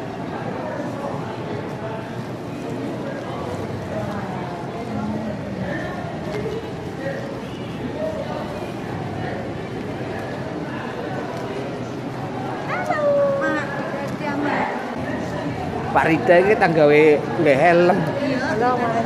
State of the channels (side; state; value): both; identical; correlation 1.00